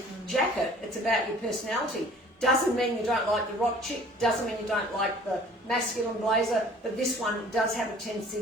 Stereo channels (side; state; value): both; normal; correlation 0.51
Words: jacket. It's about your personality. Doesn't mean you don't like the rock chick, doesn't mean you don't like the masculine blazer, but this one does have a tendency